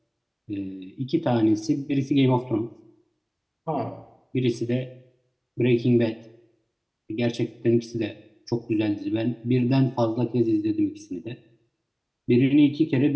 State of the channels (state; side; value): identical; both; correlation 1.00